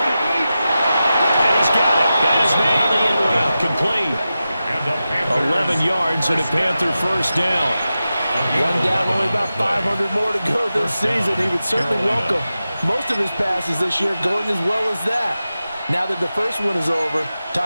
he's got it. Got his man on the end route. Complete. 11 yards and a Panther first down. One down, only about 500 more to go this season. He would certainly welcome most of his passes this year going as well as that. Now that the first one is over,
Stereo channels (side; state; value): both; inverted; correlation -0.92